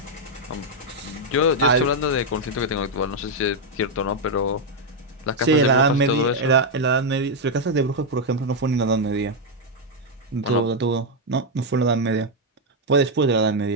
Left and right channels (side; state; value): both; normal; correlation 0.01